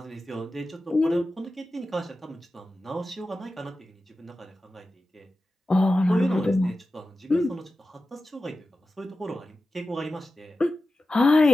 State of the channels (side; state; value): both; normal; correlation 0.94